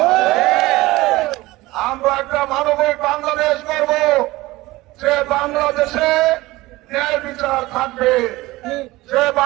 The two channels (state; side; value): quieter; left; 19.3 dB